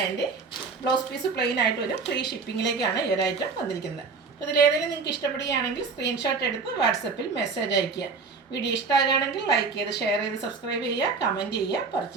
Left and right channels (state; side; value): quieter; left; 4.7 dB